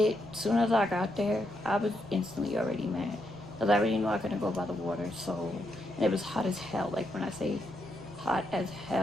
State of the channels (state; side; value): noise; left; rumble, 28 dB below the sound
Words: soon as I got there, I was instantly already mad. Because I already knew I couldn't go by the water, so, and it was hot as hell. Like when I say hot as